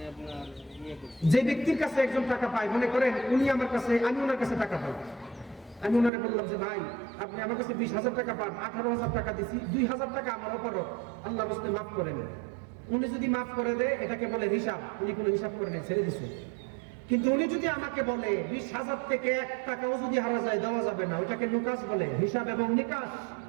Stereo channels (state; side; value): drops out; left; at 6.1 s